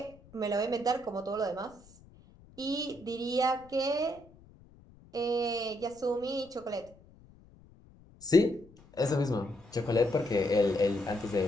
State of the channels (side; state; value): left; noise; rumble, 25 dB below the sound